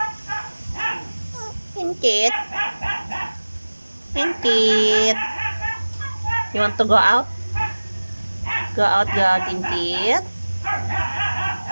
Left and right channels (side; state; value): both; inverted; correlation -1.00